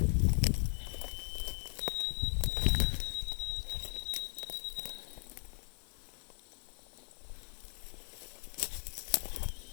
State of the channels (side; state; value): right; silent; 53 dB below the other